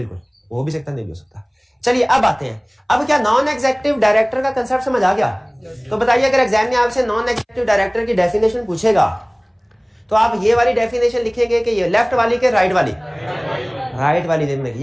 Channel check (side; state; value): both; identical; correlation 1.00